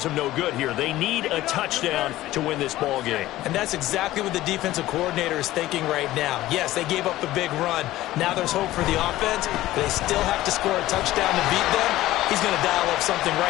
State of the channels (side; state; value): right; quieter; 15.8 dB